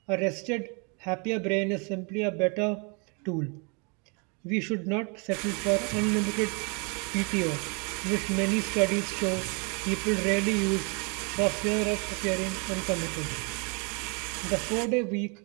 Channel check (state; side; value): quieter; left; 34.5 dB